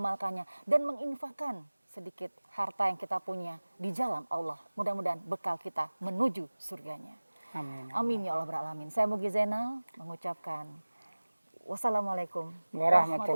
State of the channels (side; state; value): both; inverted; correlation -1.00